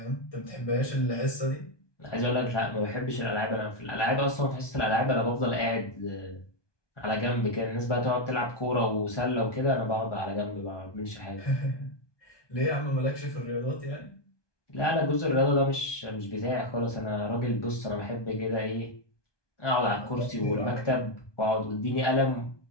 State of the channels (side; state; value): right; late; 1.2 ms